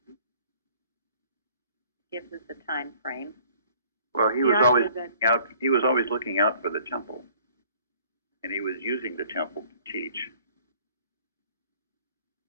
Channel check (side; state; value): both; inverted; correlation -0.56